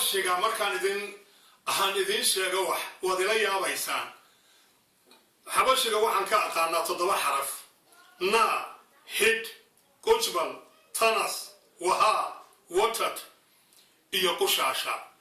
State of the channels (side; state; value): both; identical; correlation 1.00